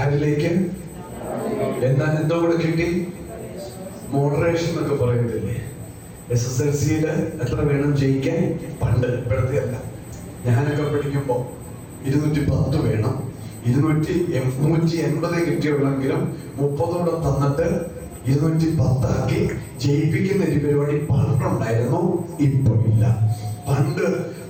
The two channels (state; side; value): identical; both; correlation 1.00